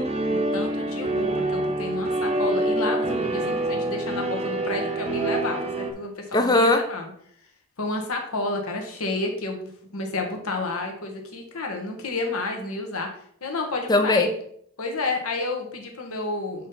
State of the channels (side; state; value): both; normal; correlation 0.28